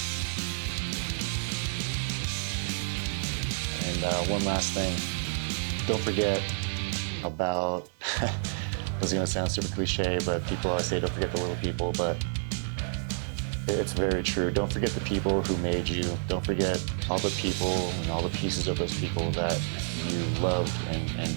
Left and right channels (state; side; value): silent; left; 55 dB below the other